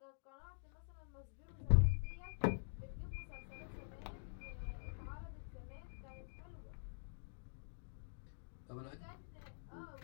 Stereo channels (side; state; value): right; silent; digital silence